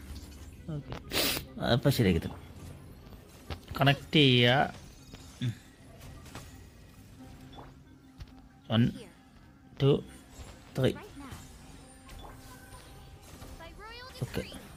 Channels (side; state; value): both; identical; correlation 1.00